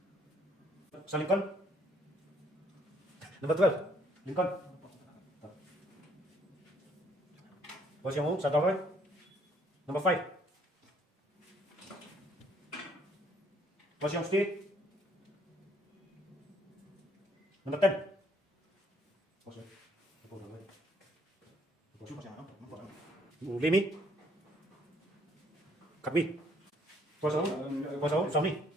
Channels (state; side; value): normal; both; correlation 0.65